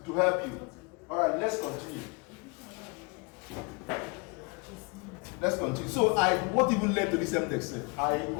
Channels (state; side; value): quieter; right; 32.0 dB